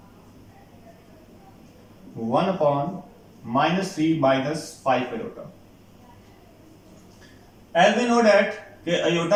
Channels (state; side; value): identical; both; correlation 1.00